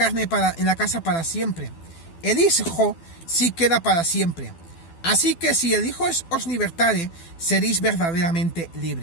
la casa para siempre. El Hijo sí queda para siempre. Así que si el Hijo os libertare, seréis verdaderamente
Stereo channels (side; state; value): right; late; 12 ms